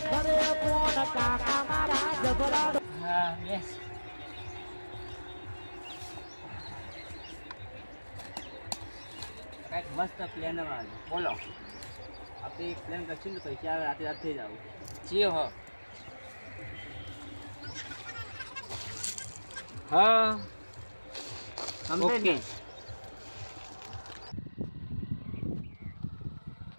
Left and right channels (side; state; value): both; inverted; correlation -1.00